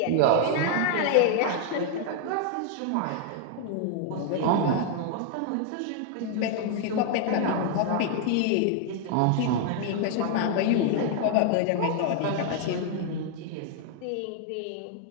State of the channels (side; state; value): both; different; correlation 0.00